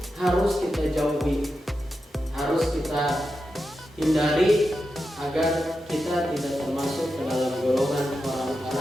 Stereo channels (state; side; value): normal; both; correlation 0.89